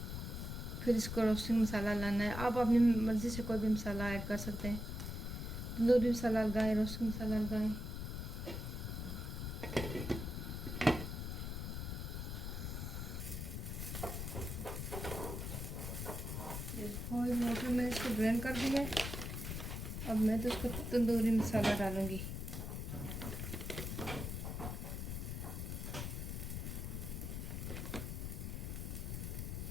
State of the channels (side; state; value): left; noise; rumble, 4 dB below the sound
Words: फिर इसको रोस्टिंग मसाला लाना है। आप अपनी मर्ज़ी से कोई भी मसाला ऐड कर सकते हैं, तंदूरी मसाला लगाएं, रोस्टिंग मसाला लगाएं। बॉइल वाटर में इसको ड्रेन कर दिया। अब मैं तो इसको तंदूरी मसाला डालूंगी।